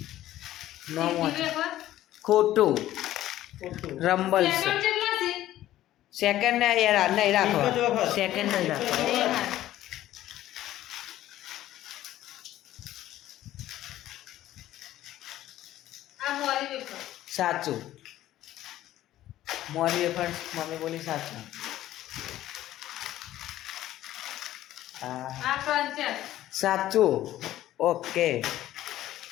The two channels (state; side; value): quieter; right; 13.9 dB